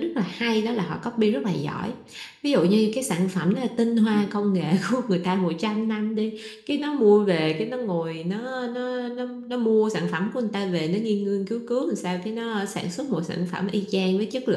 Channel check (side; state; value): both; identical; correlation 1.00